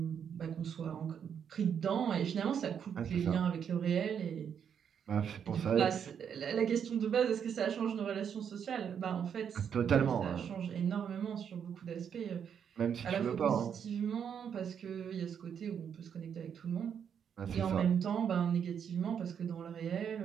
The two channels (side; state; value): left; quieter; 7.9 dB